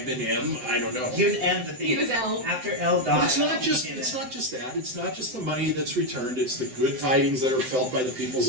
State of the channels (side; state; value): left; late; 7.8 ms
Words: been M. I don't know. He was M the He thief. was L. After L But died. it's not just he came it's in. not just that. It's not just the money that's returned. It's the good tidings that are felt by the peoples